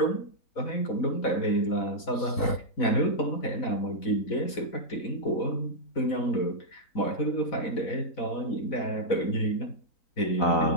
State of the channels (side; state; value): right; late; 4.1 ms